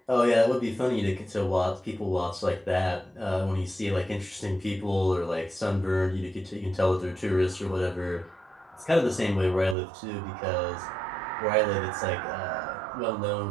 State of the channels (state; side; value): drops out; left; at 9.8 s